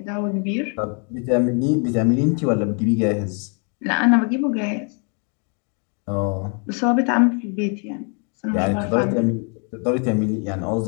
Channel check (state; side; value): quieter; right; 38.7 dB